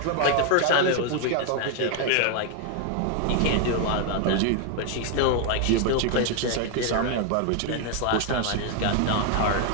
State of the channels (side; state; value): both; different; correlation 0.00